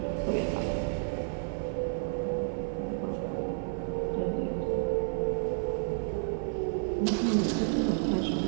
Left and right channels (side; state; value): left; silent; 57 dB below the other